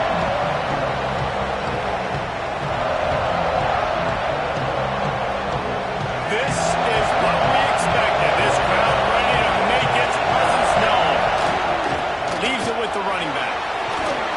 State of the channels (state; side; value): identical; both; correlation 1.00